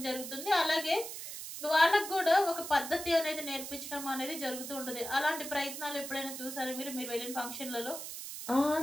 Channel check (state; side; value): noise; right; hiss, 8 dB below the sound